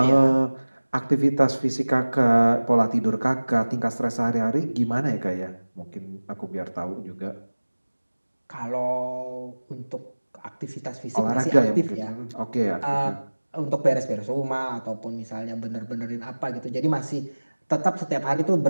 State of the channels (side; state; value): both; inverted; correlation -1.00